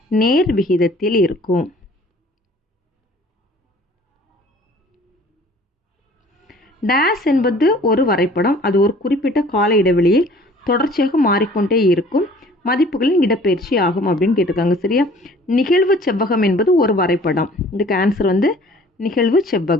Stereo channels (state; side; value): normal; both; correlation 0.51